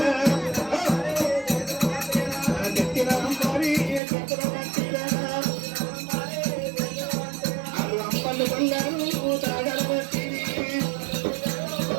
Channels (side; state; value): left; drops out; at 4.0 s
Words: ఎక్కిన అంబారి చేతుల పట్టిరా, అంపలు కొల్లారు తాగల పట్టిరి,